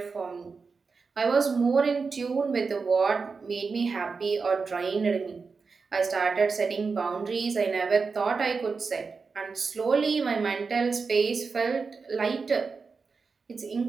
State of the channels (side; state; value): left; quieter; 4.8 dB